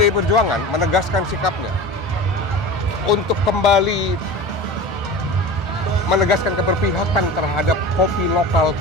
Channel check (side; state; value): both; normal; correlation 0.33